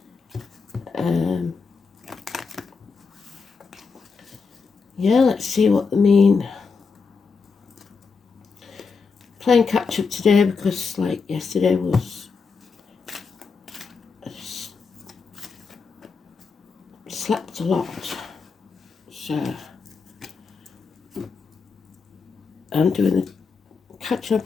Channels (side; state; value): right; quieter; 5.0 dB